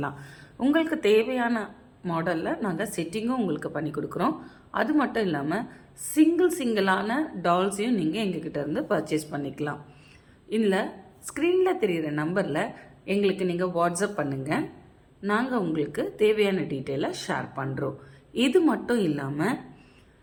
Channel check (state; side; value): identical; both; correlation 1.00